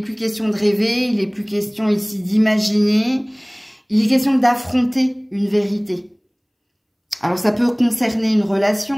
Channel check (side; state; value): both; identical; correlation 1.00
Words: question de rêver, il n'est plus question ici d'imaginer. Il est question d'affronter une vérité. Alors, ça peut concerner une